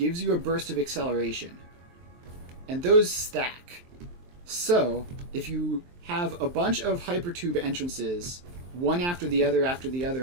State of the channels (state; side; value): late; left; 23 ms